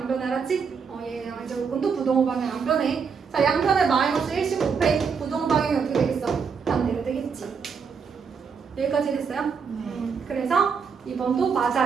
변해. 알았지? 얘 양의 제곱근도 부등호 방향 안 변해. 자, 양변에 마이너스 1씩 곱해. 부등호 방향이 어떻게 되겠어? 반대로 되겠지. 여기까지 됐어요? 그래서 2번도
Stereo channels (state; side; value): quieter; left; 6.0 dB